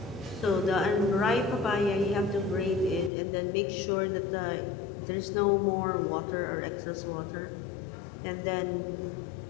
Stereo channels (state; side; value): drops out; right; at 3.1 s